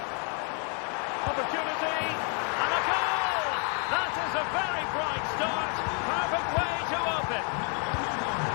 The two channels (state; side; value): quieter; right; 39.9 dB